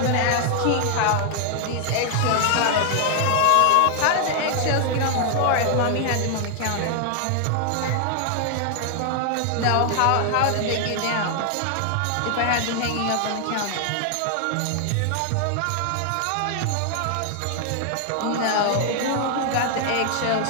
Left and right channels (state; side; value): different; both; correlation 0.00